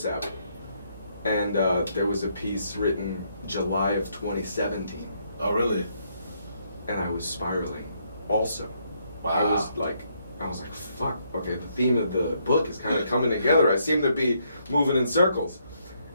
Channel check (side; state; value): both; inverted; correlation -0.73